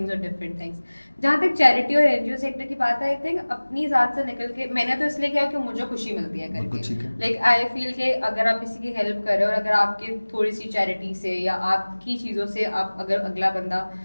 और डिफरेंट थिंग्स। जहाँ तक चैरिटी और एनजीओ सेक्टर की बात है, आई थिंक अपनी ज़ात से निकल के मैंने तो इसलिए किया कि मुझे खुशी मिलती है बिल्कुल ठीक करके, है। लाइक आई फील कि अगर आप किसी की हेल्प कर रहे हो और अगर आपके थोड़ी सी चैरिटी से या आपकी चीज़ों से आप अगर अगला बंदा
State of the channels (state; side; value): inverted; both; correlation -1.00